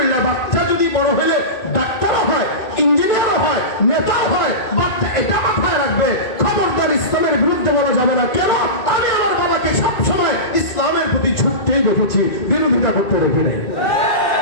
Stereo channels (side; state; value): right; late; 2.2 ms